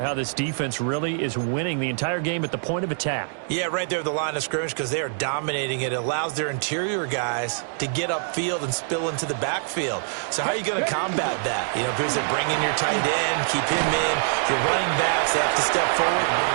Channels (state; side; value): silent; left; 62 dB below the other